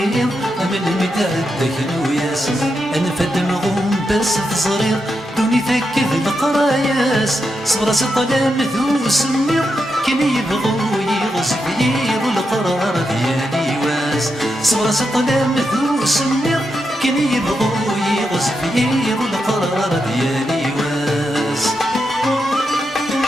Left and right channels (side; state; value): both; normal; correlation 0.85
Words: من مدعدك نوياس، أنفد مغوم بس تصريض دوني ثكذ القراياس، صبر سطلام ذو سمير كن يبغو يغصب يضو القرار ديالي واس، صبر سطلام ذو سمير كن يبغو يغصب يضو القرار ديالي واس.